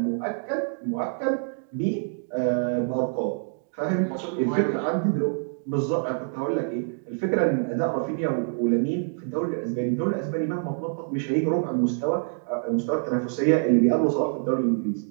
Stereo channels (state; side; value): silent; left; 61 dB below the other